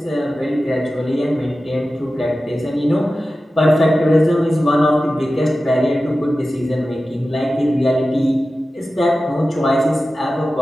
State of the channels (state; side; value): normal; both; correlation 0.94